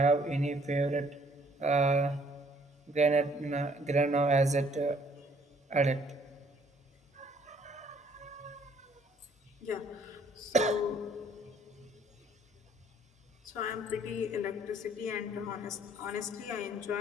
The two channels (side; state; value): both; normal; correlation 0.62